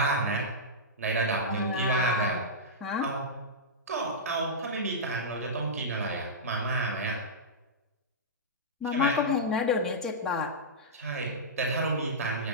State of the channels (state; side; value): normal; both; correlation -0.14